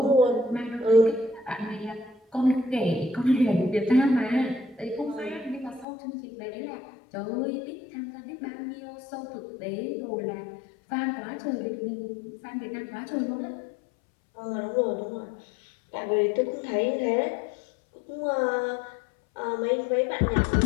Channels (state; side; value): drops out; right; at 5.9 s